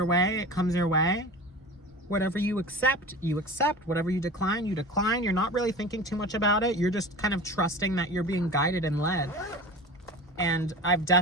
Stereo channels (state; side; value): normal; both; correlation 0.34